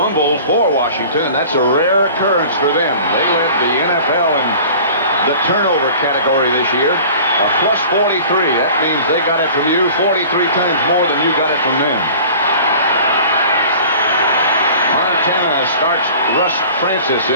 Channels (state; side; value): inverted; both; correlation -0.43